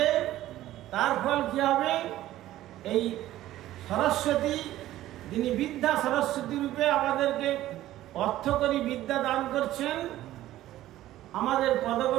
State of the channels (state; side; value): quieter; left; 14.4 dB